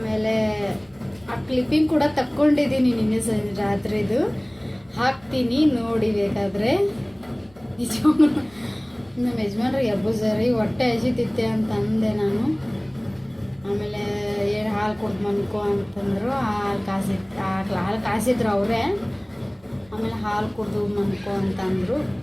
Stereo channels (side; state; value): right; noise; rumble, 29 dB below the sound